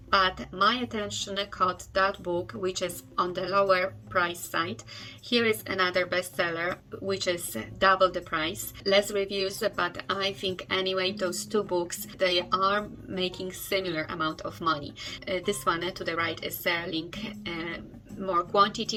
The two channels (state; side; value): identical; both; correlation 1.00